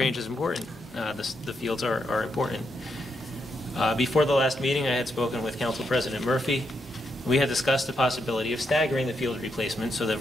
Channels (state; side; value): normal; both; correlation 0.80